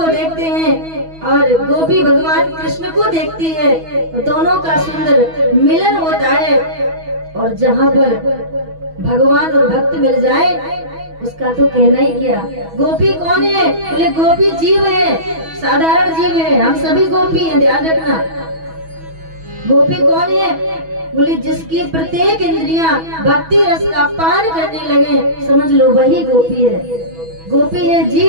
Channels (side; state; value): left; late; 6.2 ms